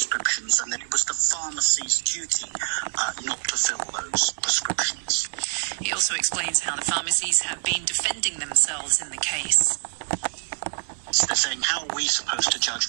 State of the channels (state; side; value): silent; left; digital silence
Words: and that it was the pharmacy's duty not to fill those prescriptions. He also explains how the pharmacies have been defending themselves in the case. So they're saying, how are we supposed to judge